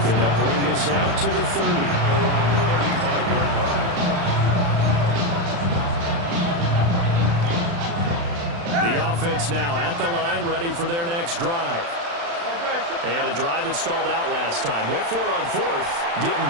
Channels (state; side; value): late; left; 35 ms